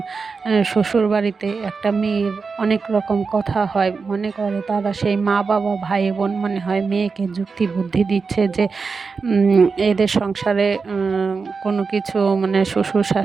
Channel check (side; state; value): left; quieter; 4.8 dB